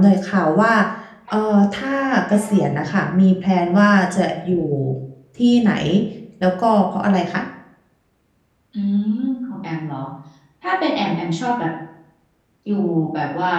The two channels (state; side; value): identical; both; correlation 1.00